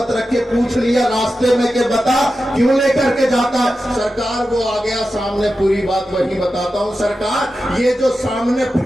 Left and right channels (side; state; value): both; normal; correlation 0.91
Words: رکھے۔ پوچھ لیا راستے میں کہ بتا کیوں لے کر کے جاتا؟ سرکار وہ آ گیا سامنے، پوری بات وہی بتاتا ہوں۔ سرکار یہ جو سامنے